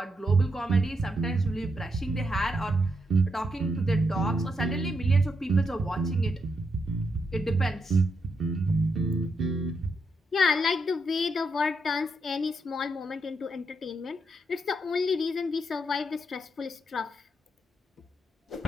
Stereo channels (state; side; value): normal; both; correlation 0.80